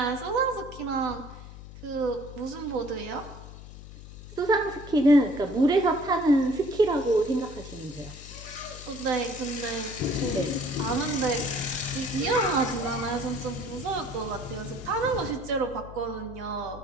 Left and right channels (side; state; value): left; noise; hum, 15 dB below the sound